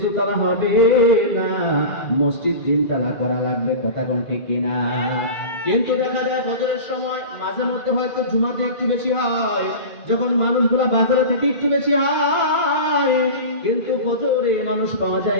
দুতলা হবে না, মসজিদ 3 তলা করা লাগবে। কথা কোন ঠিক কিনা? কিন্তু দেখা যায় ফজরের সময় মাঝে মধ্যে হয়তো জুমাতে একটু বেশি হয়, যখন মানুষগুলা বাজারে থেকে একটু বেশি হয়, কিন্তু ফজরে মানুষ পাওয়া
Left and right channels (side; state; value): right; late; 2.3 ms